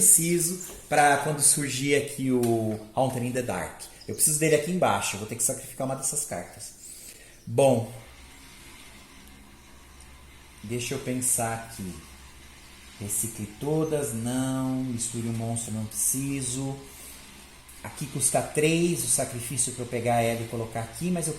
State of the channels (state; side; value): identical; both; correlation 1.00